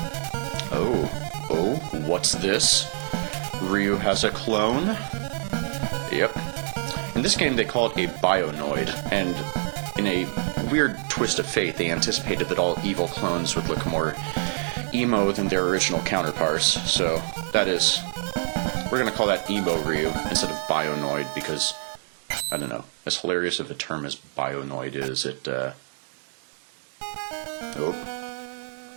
Oh, what's this? Ryu has a clone? Yep. In this game, they call it a Bionoid, and in a weird twist of fate, they anticipated that all evil clones would look more emo than their original counterparts, so that is... We're going to call that Emo Ryu instead of Bionoid because, I don't know, as hilarious of a term as Bionoid is, it,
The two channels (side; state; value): left; silent; 61 dB below the other